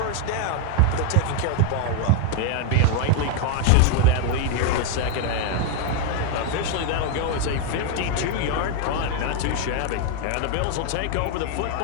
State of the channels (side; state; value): both; different; correlation 0.01